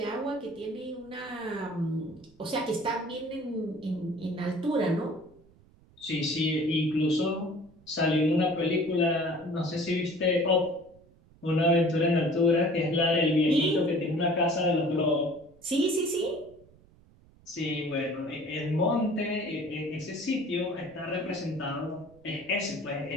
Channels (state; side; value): noise; right; rumble, 28 dB below the sound